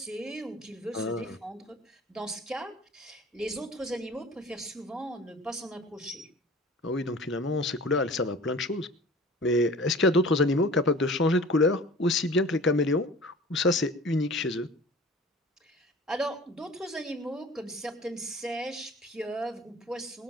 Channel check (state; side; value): normal; both; correlation 0.42